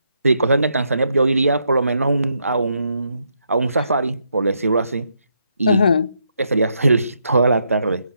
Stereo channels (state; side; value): inverted; both; correlation -0.78